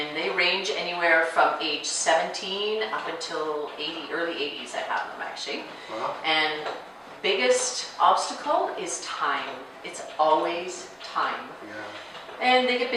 they range anywhere from age 17 up until early 80s. I have them actually. Wow. And biggest obstacle is time. It's always time. Yeah. And they get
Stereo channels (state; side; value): identical; both; correlation 1.00